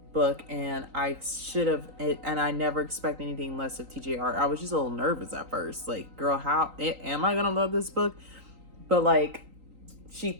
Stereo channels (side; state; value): left; late; 3.9 ms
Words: book, and I never expect anything less of TJR. I was just a little nervous at first. Like, girl, how am I gonna love this book? But like, she